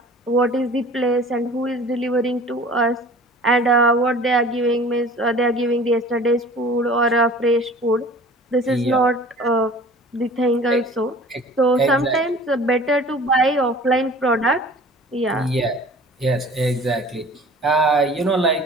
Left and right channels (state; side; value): normal; both; correlation 0.44